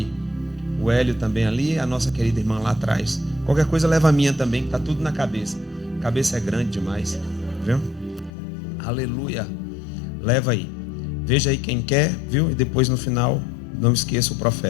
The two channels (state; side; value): drops out; right; at 8.3 s